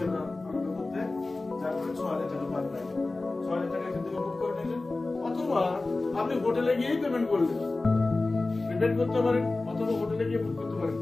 আমরা আমাদের মধ্যে, যার করে 6,000 টাকা পার নাইট। 6,000 টাকা এখান থেকে বুক করে নিলেন, অথবা আপনি হোটেলে গিয়েই পেমেন্ট করলেন, পেমেন্ট করতে পারেন, অথবা হোটেলে গিয়ে বুক করতে পারেন।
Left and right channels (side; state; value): right; quieter; 3.2 dB